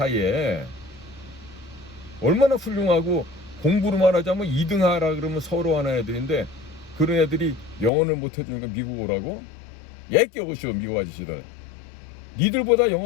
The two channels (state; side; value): drops out; right; at 7.9 s